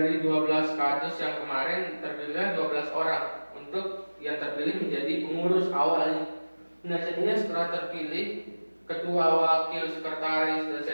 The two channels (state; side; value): inverted; both; correlation -1.00